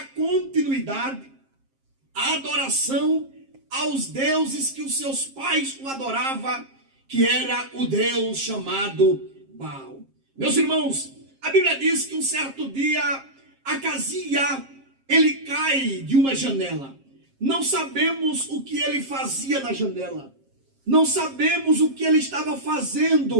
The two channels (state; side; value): late; left; 7.4 ms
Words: continuidade à adoração aos deuses que os seus pais o adoravam, que era o Deus chamado Baal. Meus irmãos, a Bíblia diz que um certo dia, Acasia, ele cai de uma janela. Não sabemos o que ele fazia na janela. Não sabemos o que ele estava